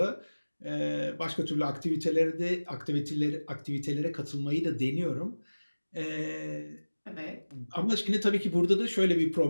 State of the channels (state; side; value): inverted; both; correlation -1.00